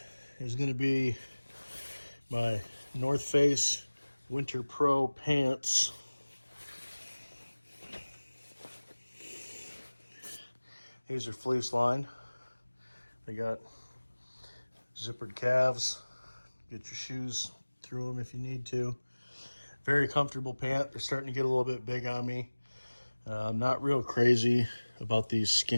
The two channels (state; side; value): inverted; both; correlation -1.00